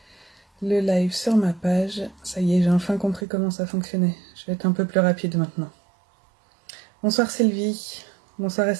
le live sur ma page. Ça y est, j'ai enfin compris comment ça fonctionnait. Je vais être un peu plus rapide maintenant. Bonsoir Sylvie, bonsoir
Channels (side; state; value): left; drops out; at 3.2 s